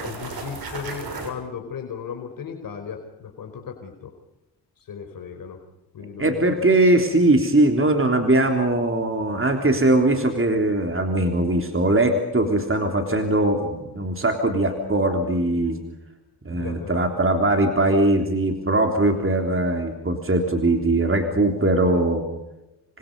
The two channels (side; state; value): both; normal; correlation 0.22